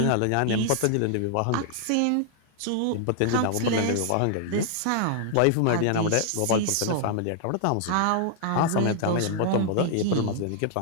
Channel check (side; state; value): both; different; correlation -0.01